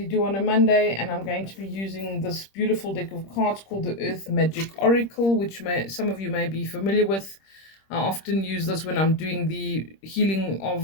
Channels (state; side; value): late; right; 26 ms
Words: do on a Monday, and I'm going to be using this beautiful deck of cards called the Earth Magic Oracle, which some of you may be familiar with. I often use this when I'm doing the healing